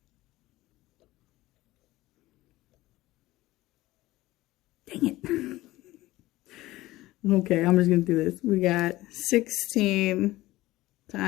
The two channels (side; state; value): right; quieter; 17.7 dB